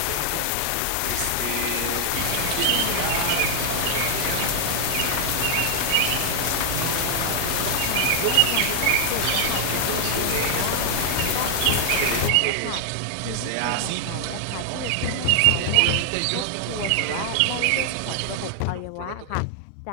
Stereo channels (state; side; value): different; both; correlation 0.00